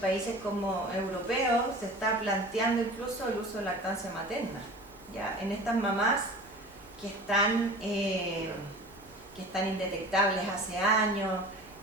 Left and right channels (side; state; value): both; normal; correlation 0.39